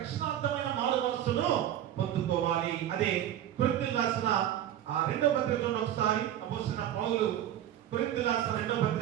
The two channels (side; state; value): left; quieter; 11.5 dB